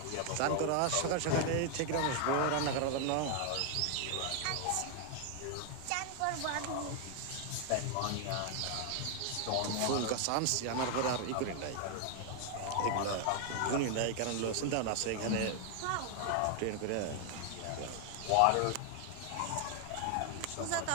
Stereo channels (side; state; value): both; different; correlation 0.00